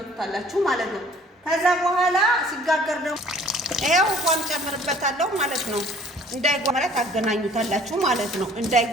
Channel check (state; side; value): normal; both; correlation 0.54